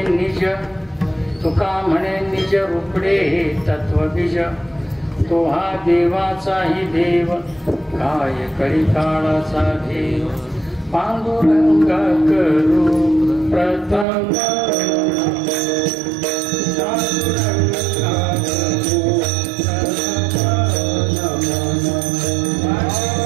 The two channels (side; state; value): left; drops out; at 14.1 s